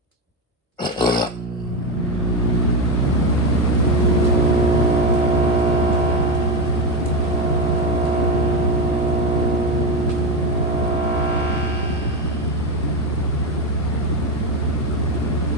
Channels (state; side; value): normal; both; correlation 0.13